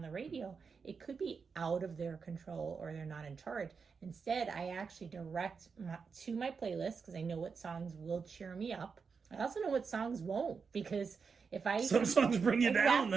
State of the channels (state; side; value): quieter; left; 5.5 dB